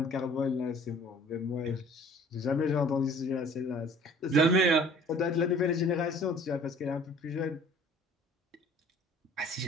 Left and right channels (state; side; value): normal; both; correlation 0.51